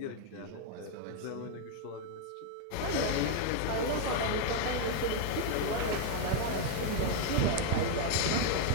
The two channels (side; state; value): both; different; correlation 0.00